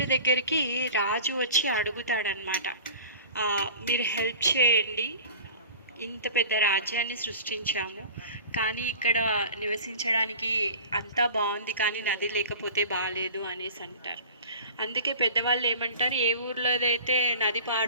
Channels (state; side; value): inverted; both; correlation -0.40